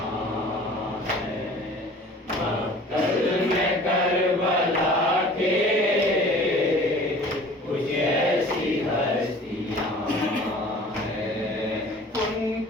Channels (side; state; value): both; normal; correlation 0.46